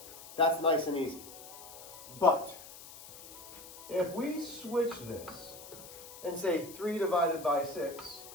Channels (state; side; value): noise; left; hiss, 16 dB below the sound